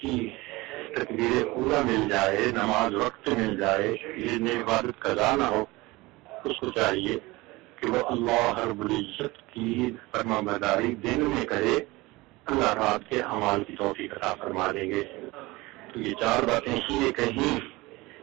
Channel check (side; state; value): left; quieter; 21.5 dB